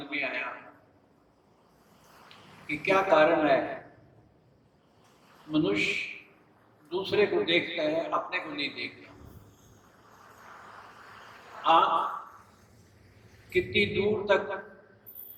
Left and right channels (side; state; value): both; identical; correlation 1.00